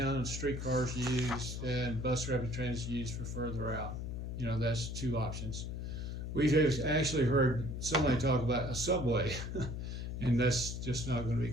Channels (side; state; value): left; noise; hum, 5 dB below the sound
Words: streetcars used and bus rapid transit used for further out. That's 2 options. We've actually heard somebody talk about a subway, and that's just not going to be